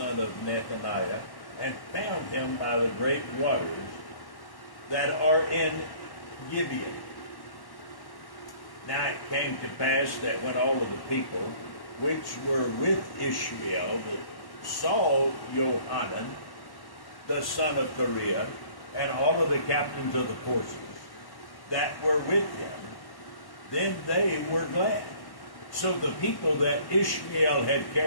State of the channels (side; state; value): right; late; 1.1 ms